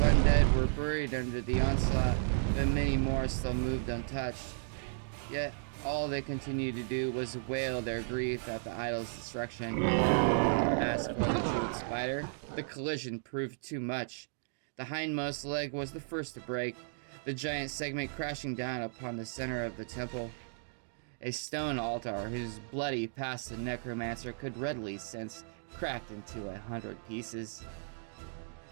were buried under the onslaught, but many more still moved untouched. Yet, All they continued to do was wail their grief at the idol's destruction. As for the jeweled spider, the collision proved too much. The hindmost leg was the first to break, the giant segment crashing down upon the center of the temple. A stone altar, whose bloody past the necromancer could readily sense, cracked into 100 pieces.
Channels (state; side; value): silent; left; digital silence